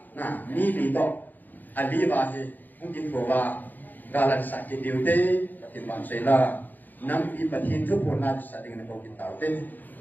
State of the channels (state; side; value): late; right; 0.086 ms